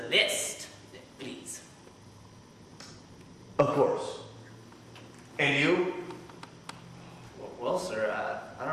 list, please. Of course. And you? Well, sir, I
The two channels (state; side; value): identical; both; correlation 1.00